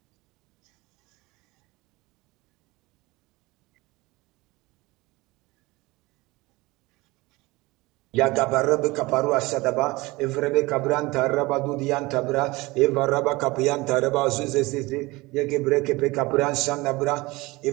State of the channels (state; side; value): quieter; left; 22.0 dB